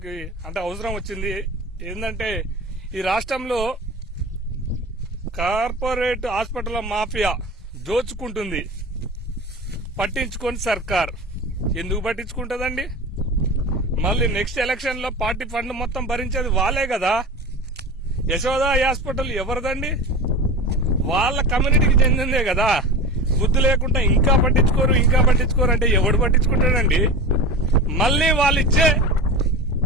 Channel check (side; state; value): both; normal; correlation 0.29